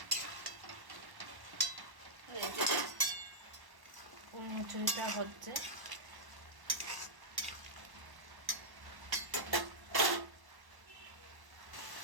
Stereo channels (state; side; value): late; left; 1.1 ms